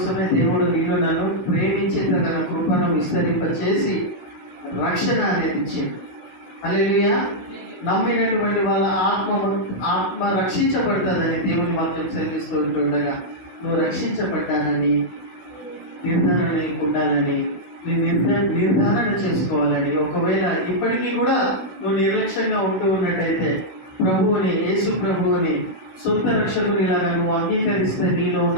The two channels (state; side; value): late; right; 16 ms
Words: దేవుడు నీలో నన్ను ప్రేమించి తన కృపను విస్తరింపచేసి రక్షణ అనేది ఇచ్చింది. హల్లెలూయా. నమ్మినటువంటి వాళ్ళ ఆత్మ రక్షించబడుతుందని దేవుని వాక్యం సెలవిస్తూ ఉంటుండగా, నువ్వు రక్షించబడ్డానని నిర్ధారణ ఉండాలని, నీ నిర్ధారణ చేసుకోవాలని. ఒకవేళ ఇప్పటికీ కూడా నువ్వు నిర్లక్ష్యంగా ఉంటూ ఉన్నట్టయితే ప్రభువుని, యేసు ప్రభువుని సొంత రక్షకునిలాగా నువ్వు అంగీకరిస్తే నీలో